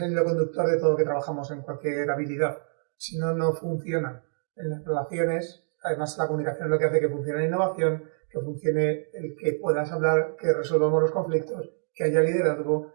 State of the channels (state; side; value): silent; left; digital silence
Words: el hilo conductor de todo lo que trabajamos en cualquier habilidad. Si no, no funciona. En las relaciones, además la comunicación es lo que hace que funcione la innovación, que funcione el que puedas hablar, que resolvamos los conflictos, que haya liderazgo,